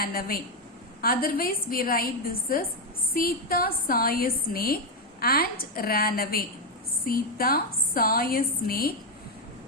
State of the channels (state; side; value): normal; both; correlation 0.06